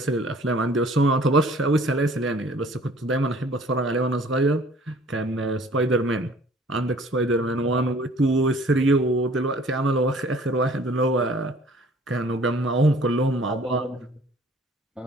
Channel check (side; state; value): both; normal; correlation 0.53